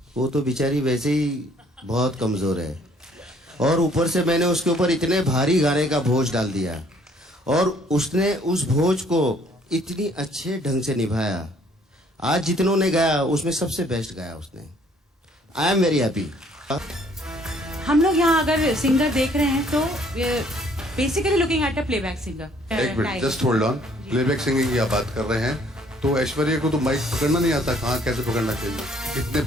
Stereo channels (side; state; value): both; normal; correlation 0.61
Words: वो तो बेचारी वैसे ही बहुत कमजोर है। और ऊपर से मैंने उसके ऊपर इतने भारी गाने का बोझ डाल दिया और उसने उस बोझ को इतनी अच्छे ढंग से निभाया। आज जितनों ने गाया उसमें सबसे बेस्ट गाया उसने। I am very happy. हम लोग यहाँ अगर सिंगर देख रहे हैं तो basically looking at a playback singer. एक minute, just hold on. Playback singing की आप बात कर रहे हैं, तो ऐश्वर्या को तो माइक पकड़ना नहीं आता, कहाँ कैसे पकड़ना चाहिए, कितने